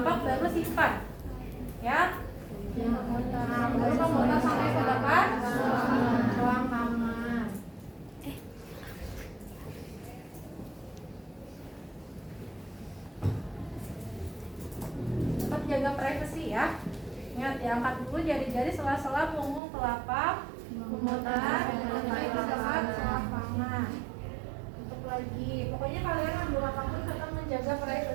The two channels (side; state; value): left; drops out; at 19.6 s